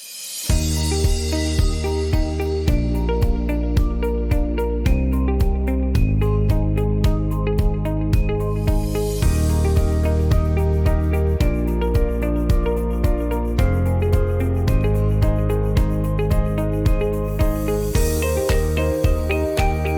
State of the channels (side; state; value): both; identical; correlation 1.00